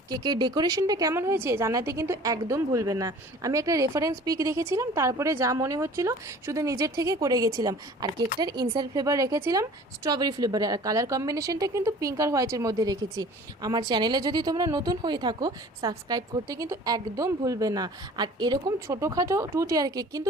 কেকের ডেকোরেশনটা কেমন হয়েছে জানাতে কিন্তু একদম ভুলবে না। আমি একটা রেফারেন্স পিক দেখেছিলাম, তারপরে যা মনে হচ্ছিল শুধু নিজের থেকে করে গেছিলাম। আর কেকটার ইনসাইড ফ্লেভার রেখেছিলাম স্ট্রবেরি ফ্লেভারে, আর কালার কম্বিনেশনটা কিন্তু পিঙ্ক আর হোয়াইটের মধ্যে রেখেছি। আমার চ্যানেলে যদি তোমরা নতুন হয়ে থাকো সাবস্ক্রাইব করতে কিন্তু একদম ভুলবে না। আর এরকম ছোটোখাটো 2 টিয়ার কেক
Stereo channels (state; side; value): normal; both; correlation 0.46